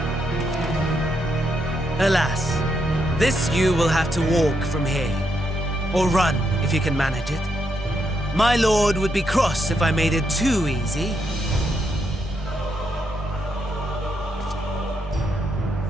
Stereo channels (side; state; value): both; normal; correlation 0.80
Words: Alas, this you will have to walk from here. Or run, if you can manage it. My lord would be cross if I made it too easy.